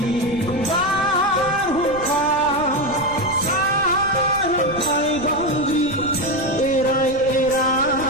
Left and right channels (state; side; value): noise; right; rumble, 15 dB below the sound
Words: बारहुंखा सारन्थाय बांग्रि एराय